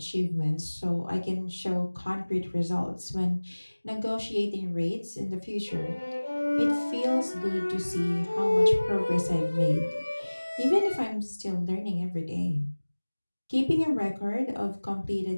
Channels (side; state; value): both; inverted; correlation -1.00